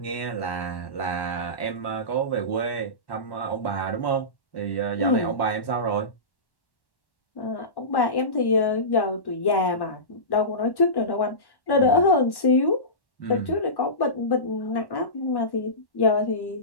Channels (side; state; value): right; late; 1.1 ms